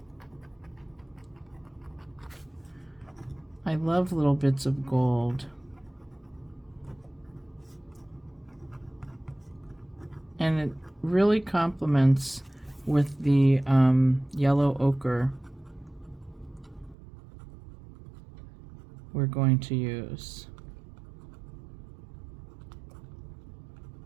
I love little bits of gold. And it really complements with the yellow ochre we're going to use.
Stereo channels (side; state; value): left; drops out; at 16.9 s